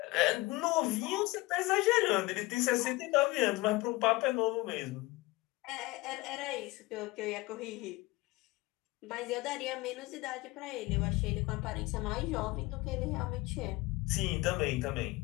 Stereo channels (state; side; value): quieter; right; 21.2 dB